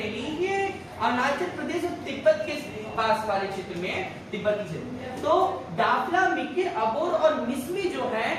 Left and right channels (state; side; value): identical; both; correlation 1.00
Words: ये अरुणाचल प्रदेश और तिब्बत के पास वाले क्षेत्र में, तिब्बती क्षेत्र। तो डाफला, मिकिर, अबोर और मिसमी जो है